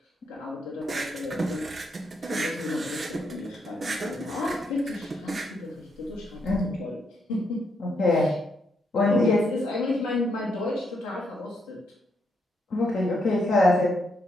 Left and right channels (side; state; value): both; normal; correlation 0.77